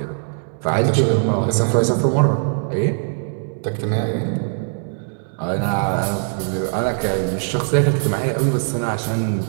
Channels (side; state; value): left; silent; 65 dB below the other